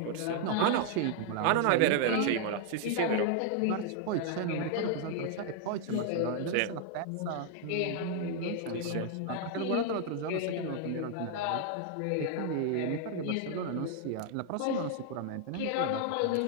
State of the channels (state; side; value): different; both; correlation 0.00